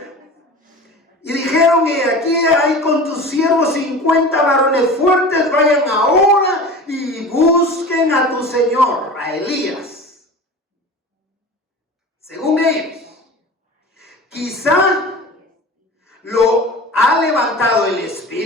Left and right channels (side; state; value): both; normal; correlation 0.36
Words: Y dijeron: y aquí hay con tus siervos 50 varones fuertes, vayan ahora y busquen a tu señor, a Elías. Según ellos, quizá lo ha levantado el